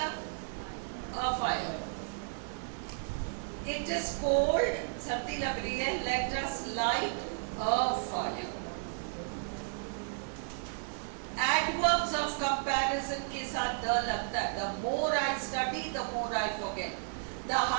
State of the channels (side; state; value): left; silent; 55 dB below the other